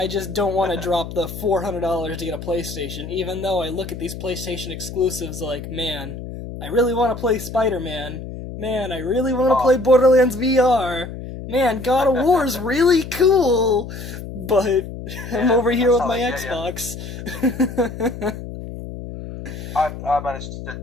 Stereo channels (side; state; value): left; noise; hum, 10 dB below the sound